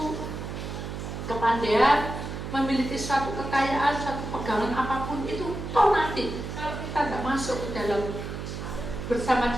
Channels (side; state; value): right; noise; hum, 6 dB below the sound